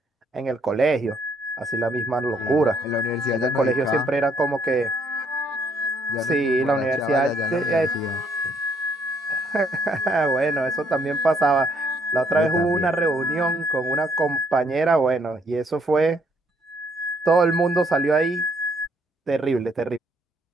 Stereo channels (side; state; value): both; normal; correlation 0.68